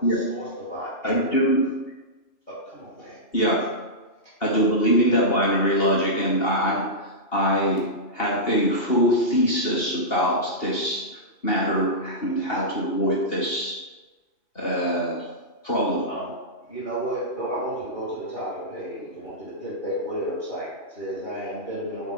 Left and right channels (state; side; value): late; right; 2.8 ms